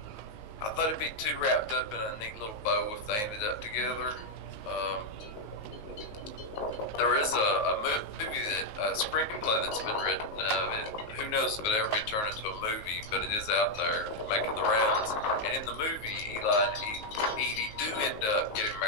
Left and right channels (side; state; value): right; late; 19 ms